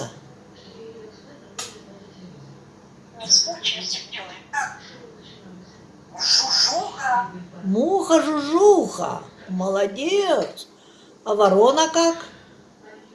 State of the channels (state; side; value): identical; both; correlation 1.00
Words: Не скучайте, делай. Жужуха. Муха-жужуха. Молодец. А ворона как?